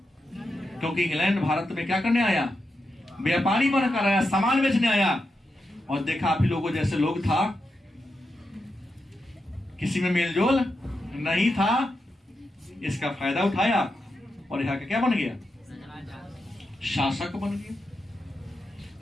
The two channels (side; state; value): both; normal; correlation 0.87